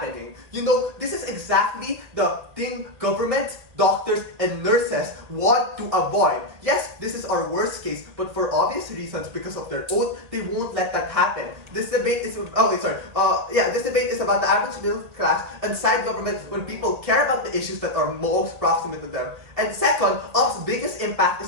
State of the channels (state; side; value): late; left; 1.8 ms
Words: You know, this is exactly the thing government, doctors, and nurses want to avoid. Yes, this is our worst case, but for obvious reasons, because of their oath, they won't let that happen. This debate is this debate is about the average middle class and side government when people care about the issues that are most proximate to them. And second, Op's biggest impact